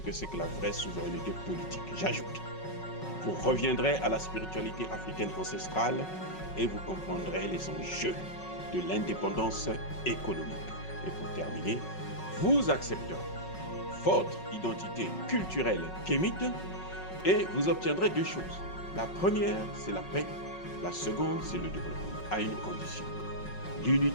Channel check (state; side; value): late; right; 5.4 ms